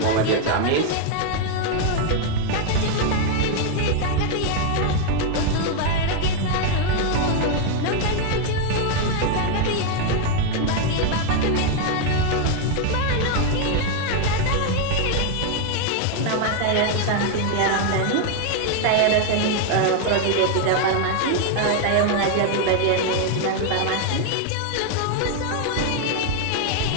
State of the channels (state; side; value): different; both; correlation 0.00